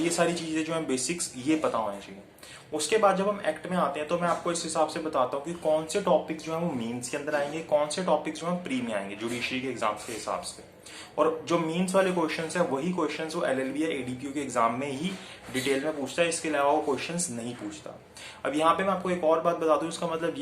ये सारी चीजें जो हैं बेसिक्स ये पता होनी चाहिए। उसके बाद जब हम एक्ट में आते हैं तो मैं आपको इस हिसाब से बताता हूँ कि कौन से टॉपिक्स जो है वो मेंस के अंदर आएंगे, कौन से टॉपिक्स जो है प्री में आएंगे जुडिशरी के एग्जाम्स के हिसाब से। और जो मेंस वाले क्वेश्चंस है वही क्वेश्चंस वो एलएलबी या एडीपीयू के एग्जाम में ही डिटेल में पूछता है, इसके अलावा वो क्वेश्चंस नहीं पूछता। अब यहाँ पे मैं आपको एक और बात बता दूं, इसका मतलब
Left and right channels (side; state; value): both; identical; correlation 1.00